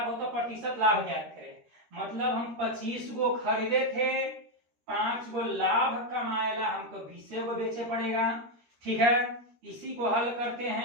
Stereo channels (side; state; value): left; late; 13 ms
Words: हो तो प्रतिशत लाभ ज्ञात करें। मतलब हम 25 गो खरीदे थे, 5 गो लाभ कमाएला हमको 20 गो बेचे पड़ेगा। ठीक है, इसी को हल करते